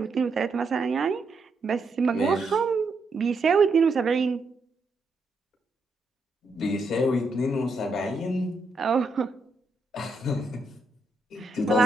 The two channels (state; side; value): quieter; left; 3.0 dB